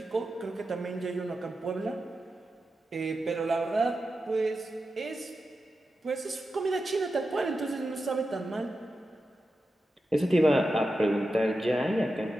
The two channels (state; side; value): normal; both; correlation 0.91